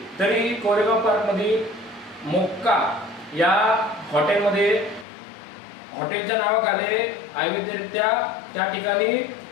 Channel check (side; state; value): right; drops out; at 5.1 s